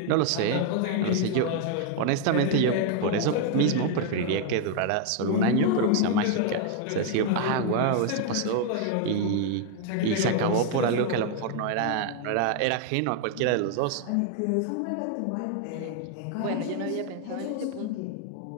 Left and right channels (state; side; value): different; both; correlation 0.00